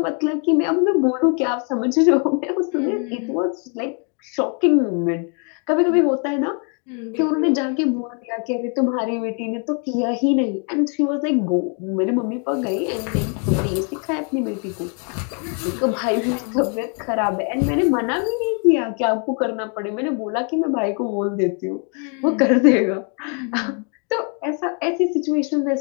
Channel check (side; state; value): right; quieter; 38.9 dB